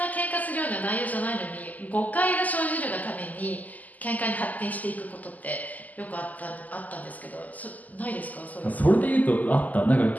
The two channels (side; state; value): right; late; 0.079 ms